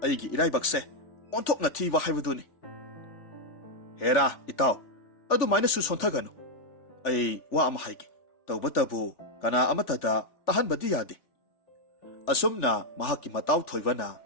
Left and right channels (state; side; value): late; right; 3.4 ms